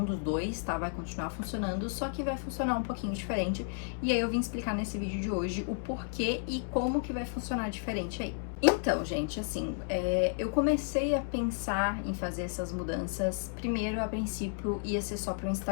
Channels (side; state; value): right; silent; digital silence